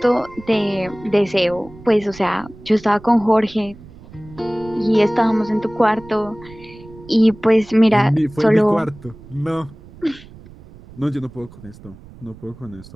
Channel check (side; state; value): right; noise; rumble, 20 dB below the sound